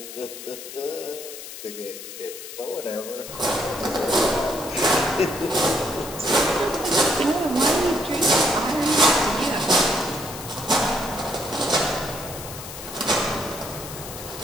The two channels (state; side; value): noise; left; hiss, 11 dB below the sound